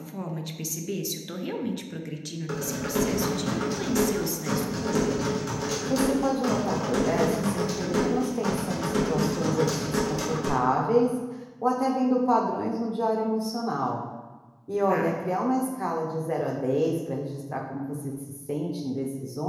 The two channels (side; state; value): both; identical; correlation 1.00